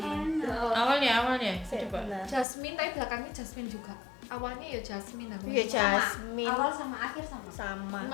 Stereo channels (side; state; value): right; drops out; at 2.5 s